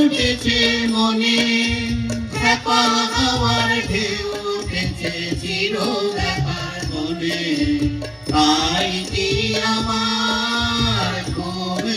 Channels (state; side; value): identical; both; correlation 1.00